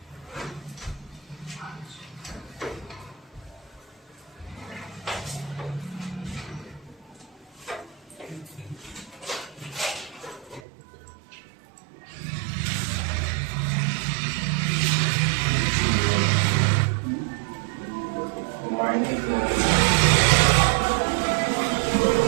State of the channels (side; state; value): left; drops out; at 10.6 s